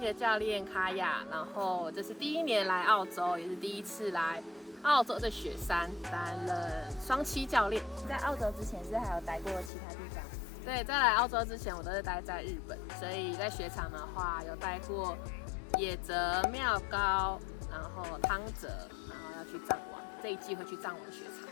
教练卡雅。然后这是第一年来澳洲，也是第一次来澳洲的雪山担任双栖教练。在澳洲之前是还有待过其他地方？对，在来澳洲之前我都是待在日本，所以在雪场的话有待过野泽、妙高，然后汤泽，然后要去藏王，这一季会去藏王雪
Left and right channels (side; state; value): right; drops out; at 9.7 s